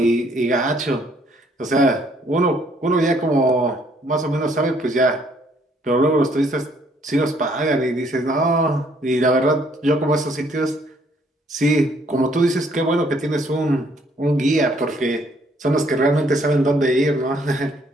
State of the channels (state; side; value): normal; both; correlation 0.65